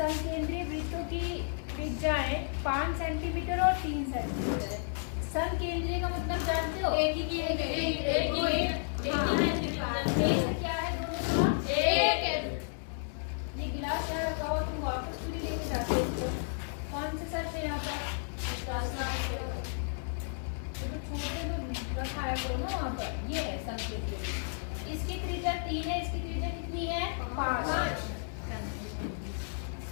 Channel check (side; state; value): right; silent; digital silence